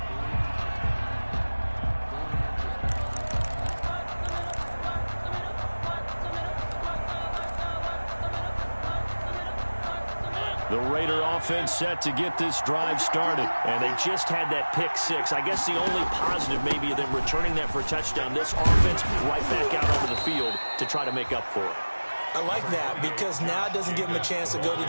The Raider offense set to get this drive started. And they just had that pick six. I guess the only positive maybe of them returning that for a touchdown. This offense right back out onto the field to try to make up for it. I like that because now it doesn't give them a chance to go to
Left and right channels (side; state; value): both; inverted; correlation -1.00